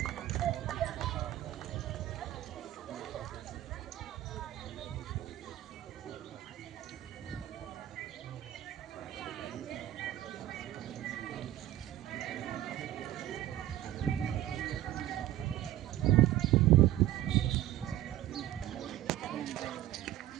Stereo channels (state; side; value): quieter; left; 13.6 dB